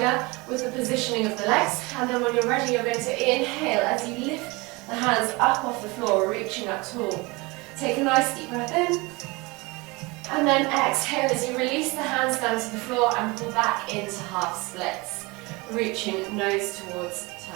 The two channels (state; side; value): quieter; left; 25.0 dB